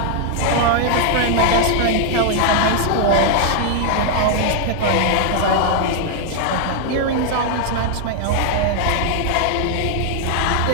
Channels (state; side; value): different; both; correlation 0.00